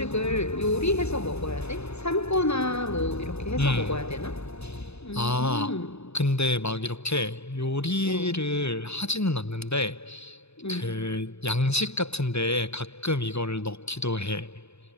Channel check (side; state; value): right; late; 0.80 ms